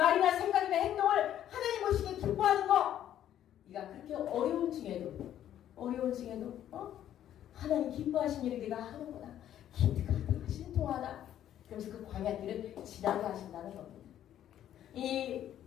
생각이나 행동을 하나님 보시기에 기뻐하는 거, 네가 그렇게 어려운 중에도 하나님 기뻐하신 일을 네가 하는구나, 기특하다, 신통하다, 그러면서 그 광야길을 지나게 하신다는 겁니다.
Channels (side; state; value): right; quieter; 11.2 dB